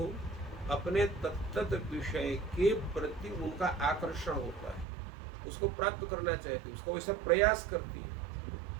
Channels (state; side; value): drops out; left; at 4.9 s